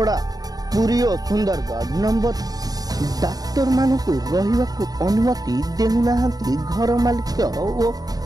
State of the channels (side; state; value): left; late; 0.18 ms